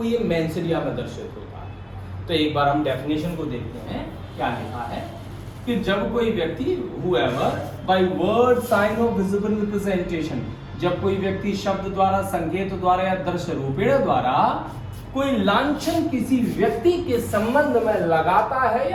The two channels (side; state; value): both; identical; correlation 1.00